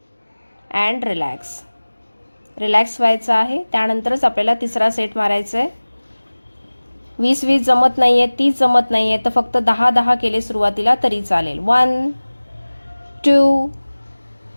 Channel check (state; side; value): inverted; both; correlation -1.00